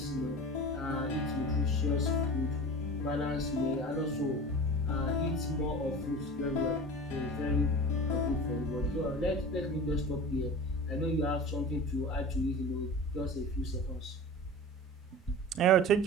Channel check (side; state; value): both; normal; correlation 0.35